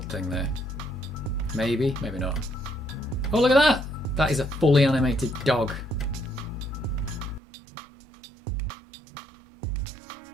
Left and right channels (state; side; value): drops out; left; at 7.4 s